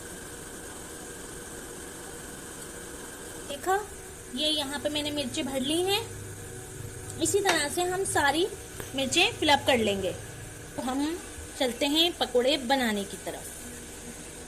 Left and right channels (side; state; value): both; identical; correlation 1.00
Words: देखा, ये यहाँ पे मैंने मिर्चें भर ली हैं। इसी तरह से हम सारी मिर्चें फिलअप कर लेंगे। तो हम चलते हैं पकोड़े बनाने की